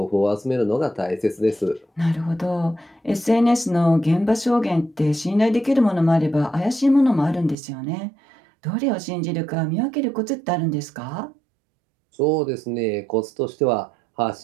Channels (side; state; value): left; drops out; at 7.6 s